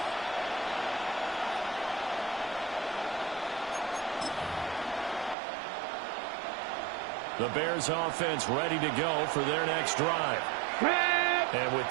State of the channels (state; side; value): drops out; left; at 5.4 s